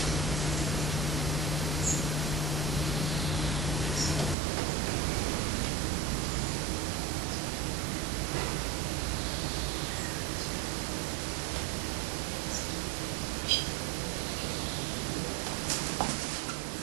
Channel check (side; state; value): left; drops out; at 4.4 s